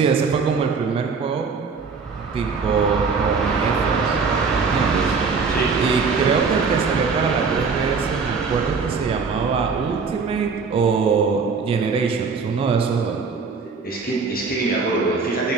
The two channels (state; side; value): quieter; left; 4.9 dB